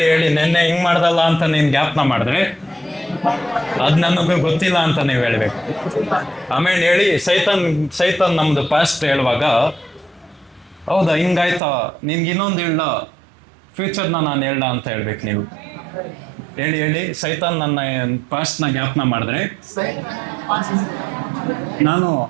ನೆನ್ನೆ ಹಿಂಗ್ ಮಾಡ್ದಲ್ಲ ಅಂತ ನೀನ್ ಜ್ಞಾಪನ ಮಾಡಿದ್ರೆ ಅದ್ ನನಗೂ ಗೊತ್ತಿಲ್ಲ ಅಂತ ನೀವು ಹೇಳ್ಬೇಕು. ಆಮೇಲೆ ಹೇಳಿ, ಸೈತಾನ್ ನಮ್ದು ಪಾಸ್ಟ್ ಹೇಳುವಾಗ, ಹೌದಾ ಹಿಂಗಾಯ್ತಾ, ನಿನ್ಗೆ ಇನ್ನೊಂದು ಹೇಳ್ದ, ಫ್ಯೂಚರ್ನ ನಾನು ಹೇಳ್ದ ಅಂತ ಹೇಳ್ಬೇಕು ನೀವು. ಹೇಳಿ, ಸೈತಾನ್ ನನ್ನ ಪಾಸ್ಟ್ನ ಜ್ಞಾಪನ ಮಾಡಿದ್ರೆ ನಾನು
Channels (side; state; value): left; drops out; at 11.6 s